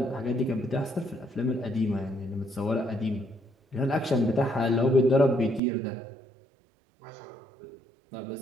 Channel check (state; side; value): drops out; left; at 5.6 s